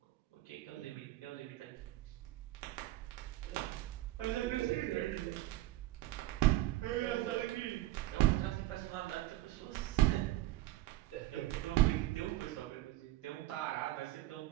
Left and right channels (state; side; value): quieter; left; 16.1 dB